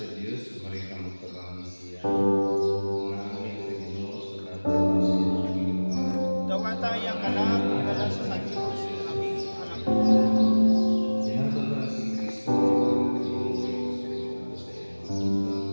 Diyos, marika magtabang siya. Mga amin sa Ginoo, sa dapat ng siya Panginoon. Dawatayang kalam, dala sa Diyos, aming anak. Tinato na si Kristo, ang Panginoon sa iyo.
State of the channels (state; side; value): inverted; both; correlation -1.00